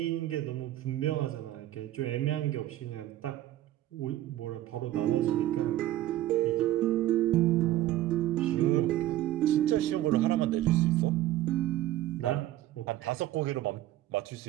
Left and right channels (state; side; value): quieter; left; 14.1 dB